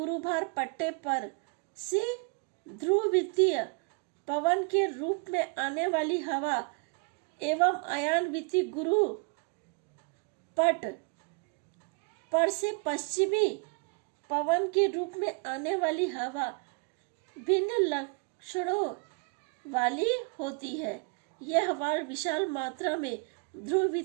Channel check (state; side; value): quieter; left; 35.1 dB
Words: पट्टे पर से ध्रुव वृत्तीय पवन के रूप में आने वाली हवा एवं अयान वृत्तीय गुरु पट पर से पश्चिमी पवन के रूप में आने वाली हवा भिन्न लक्षणों वाली होती है। यह हवा विशाल मात्रा में ध्रुव